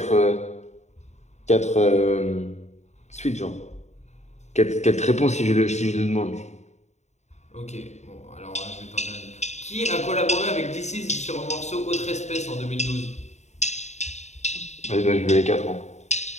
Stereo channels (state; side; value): late; right; 0.33 ms